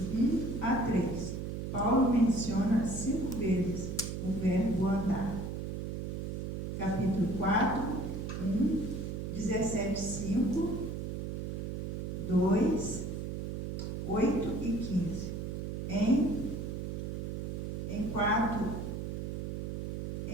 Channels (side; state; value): right; noise; hum, 4 dB below the sound